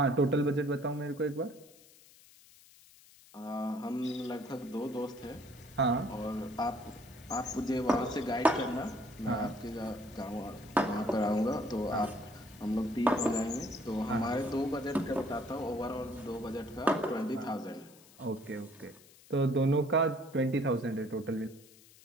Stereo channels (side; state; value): left; noise; hiss, 24 dB below the sound